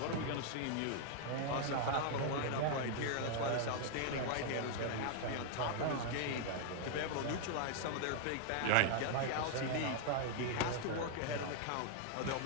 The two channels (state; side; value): different; both; correlation 0.00